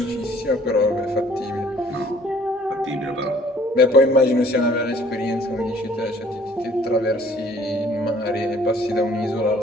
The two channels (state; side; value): normal; both; correlation 0.56